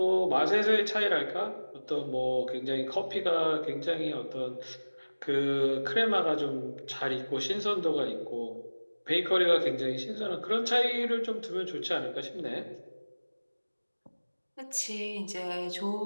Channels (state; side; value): inverted; both; correlation -1.00